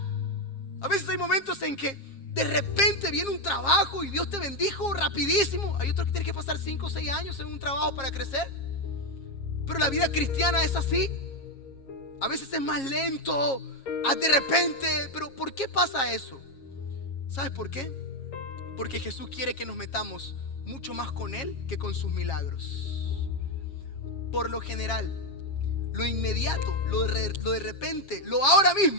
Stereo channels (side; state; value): right; late; 7.4 ms